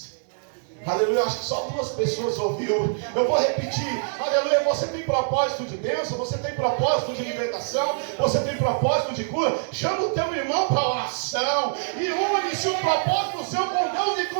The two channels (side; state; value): left; silent; digital silence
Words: Aleluia, acho que só 2 pessoas ouviu. Eu vou repetir. Aleluia, você tem propósito de bênção, você tem propósito de libertação, você tem propósito de cura. Chama o teu irmão para oração e une-se o propósito seu com Deus e